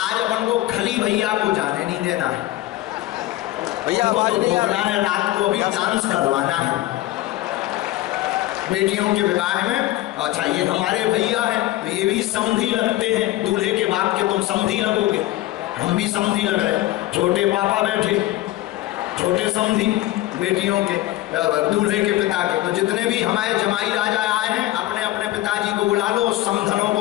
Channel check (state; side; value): quieter; right; 16.3 dB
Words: अपन को खली भैया को जाने नहीं देना है, भैया तो भोगना है, रात को अभी डांस करवाना है बेटियों के विवाह में। अच्छा, ये हमारे भैया हैं, तो ये भी समधी लगते हैं, दूल्हे के बाप के तुम समधी लगोगे, हम भी समधी लग रहे। छोटे पापा बैठे, छोटे समधी बेटियों के, दूल्हे के पिता के। तो जितने भी हमारे जमाई राजा आए हैं, अपने अपने पिताजी को बुला लो, समधनों